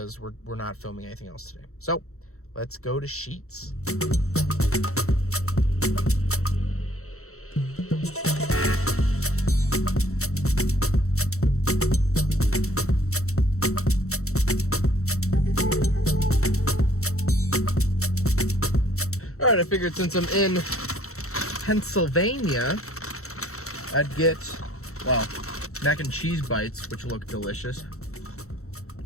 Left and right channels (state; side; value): late; right; 0.64 ms